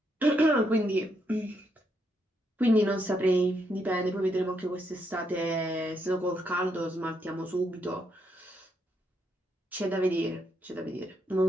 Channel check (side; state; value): both; normal; correlation 0.78